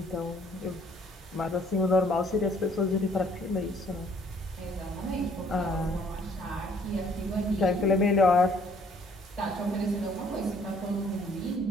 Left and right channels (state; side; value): normal; both; correlation 0.61